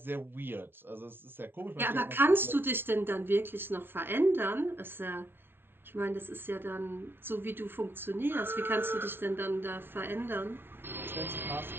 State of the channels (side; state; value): left; late; 0.11 ms